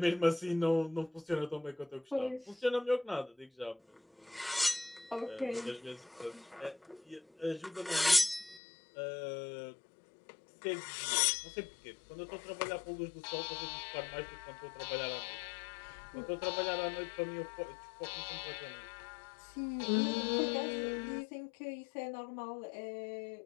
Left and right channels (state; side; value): drops out; right; at 8.6 s